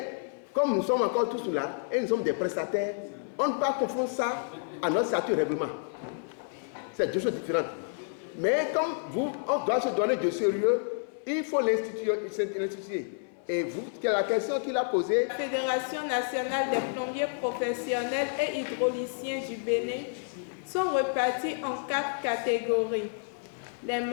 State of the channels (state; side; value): silent; right; 58 dB below the other